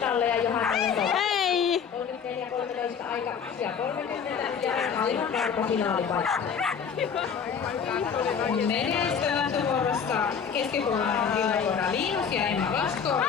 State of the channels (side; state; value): right; quieter; 6.9 dB